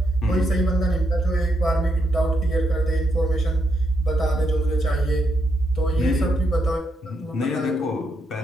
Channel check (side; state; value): both; normal; correlation 0.79